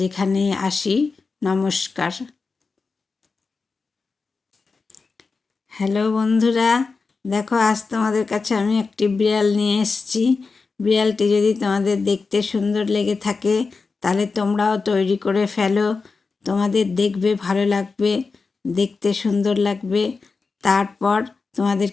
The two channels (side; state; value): right; quieter; 4.4 dB